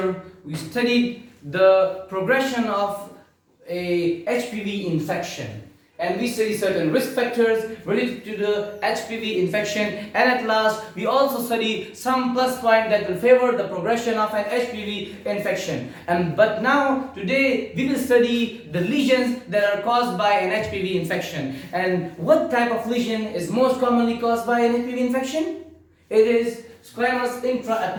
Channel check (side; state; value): both; identical; correlation 1.00